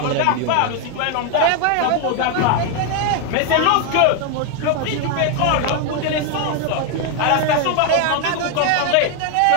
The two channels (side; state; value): both; different; correlation 0.01